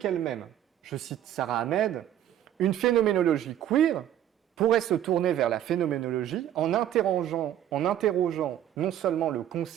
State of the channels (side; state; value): left; quieter; 11.3 dB